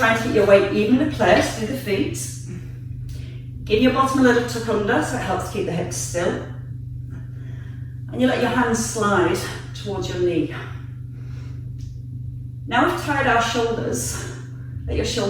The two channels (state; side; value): identical; both; correlation 1.00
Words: to keep your weight evenly placed through the feet. Give your bottom a little tuck under, so it helps keep the hips still. And you let your hands slide towards your knee. Now we've tied our shoulders, let your